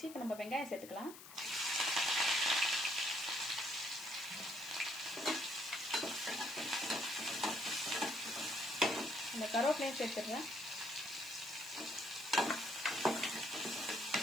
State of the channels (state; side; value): noise; left; hiss, 15 dB below the sound